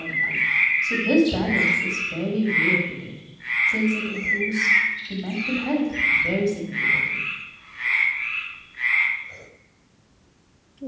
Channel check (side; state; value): both; identical; correlation 1.00